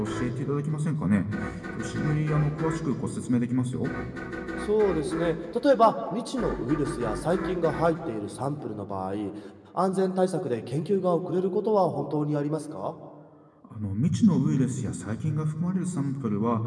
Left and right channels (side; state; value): both; identical; correlation 1.00